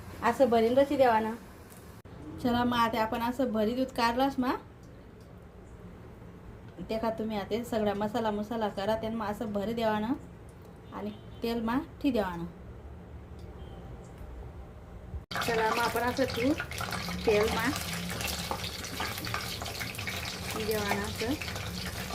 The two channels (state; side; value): identical; both; correlation 1.00